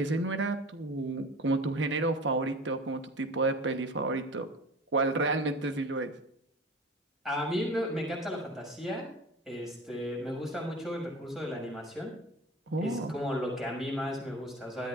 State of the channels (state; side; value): normal; both; correlation 0.36